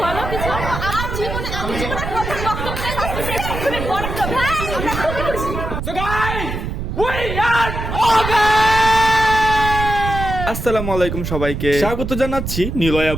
বলো কিছু। আমার জীবনে আমি জীবনের প্রথম বক্তব্য আসছে তুমি বড় তো ভাই আমরা খুবই খুশি। So guys, we are over! আসসালামু আলাইকুম সবাইকে স্বাগত জানাচ্ছি নিলয়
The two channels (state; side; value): noise; right; rumble, 5 dB below the sound